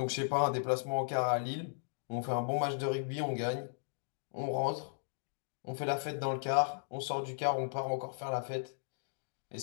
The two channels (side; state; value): right; silent; digital silence